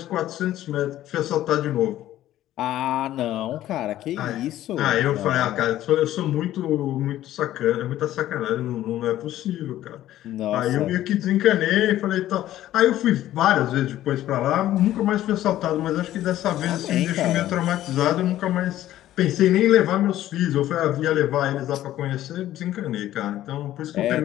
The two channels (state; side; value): quieter; right; 13.5 dB